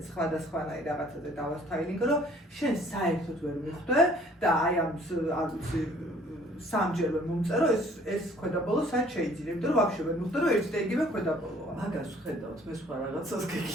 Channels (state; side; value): normal; both; correlation 0.57